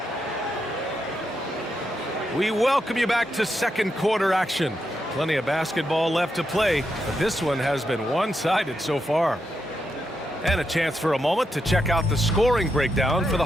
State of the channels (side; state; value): both; normal; correlation 0.83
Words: We welcome you back to second quarter action. Plenty of basketball left to play, but this one has been one-sided so far. And a chance for a moment to check out the scoring breakdown for the